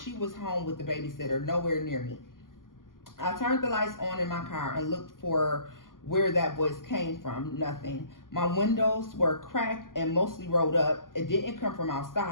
was home with the babysitter, nowhere near me. I turned the lights on in my car and looked for where that voice came from. Nothing. My windows were cracked and mostly rolled up. It didn't come from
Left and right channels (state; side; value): late; right; 0.91 ms